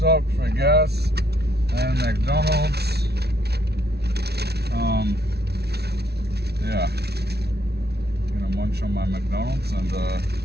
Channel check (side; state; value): left; late; 0.48 ms